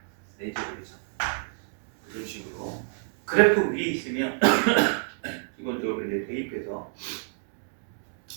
4제곱이죠. 이런 식으로 그래프 위에 있으면 기본적으로 이제 대입해서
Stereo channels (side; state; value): left; silent; digital silence